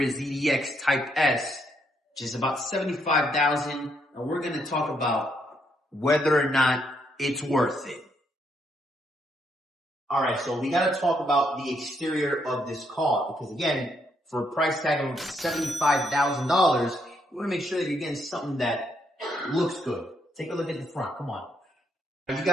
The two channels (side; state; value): both; normal; correlation 0.74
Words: Type S, which is about $75,000, and we're going to talk about whether or not it's worth it. All right, so we got to talk about the exterior of this car because, again, for a price tag of $75,000, you want to make sure that you're getting something that looks good. Take a look at the front. Come on. You